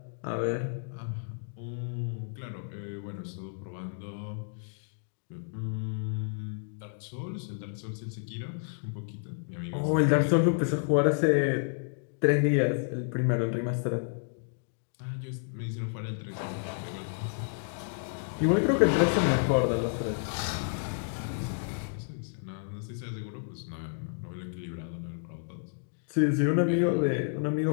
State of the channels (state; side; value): silent; right; digital silence